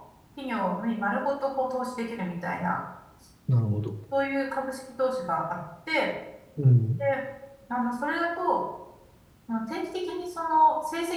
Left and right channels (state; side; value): identical; both; correlation 1.00